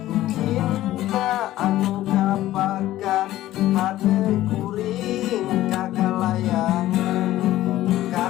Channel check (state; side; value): quieter; right; 14.8 dB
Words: cinta anu kapakan hate kuring kagalayangan